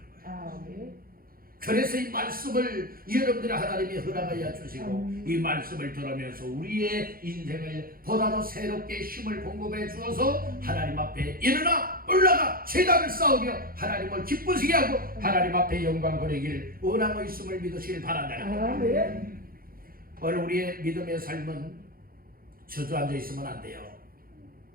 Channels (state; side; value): late; left; 0.42 ms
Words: 거예요. 그래서 이 말씀을 여러분들이 하나님이 허락하여 주시고 이 말씀을 들으면서 우리의 인생을 보다 더 새롭게 힘을 공급해 주어서 하나님 앞에 일어나 올라가 제단을 쌓으며 하나님을 기쁘시게 하고 하나님 앞에 영광 돌리길 원하고 있음을 믿으시길 바란다. 오늘 우리의 믿음의 삶은 주저앉아 있으면 안 돼요.